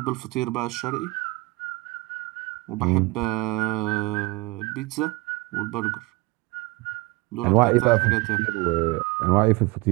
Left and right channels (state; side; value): quieter; left; 22.6 dB